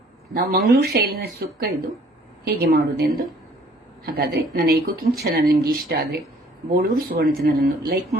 ನಾವು ಮಂಗಳೂರು ಶೈಲಿನ ಸುಕ್ಕ, ಇದು ಹೇಗೆ ಮಾಡುವುದೆಂದು. ಹಾಗಾದ್ರೆ ನನ್ನ ಈ ಕುಕಿಂಗ್ ಚಾನಲ್ ನಿಮ್ಗೆ ಇಷ್ಟ ಆದ್ರೆ ಬೋಳೂರು ಸುವರ್ಣ ಚಾನಲ್ ಅನ್ನು ಲೈಕ್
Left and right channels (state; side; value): normal; both; correlation 0.57